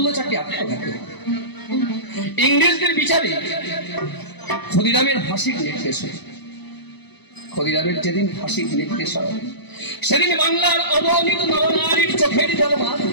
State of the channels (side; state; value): right; late; 0.99 ms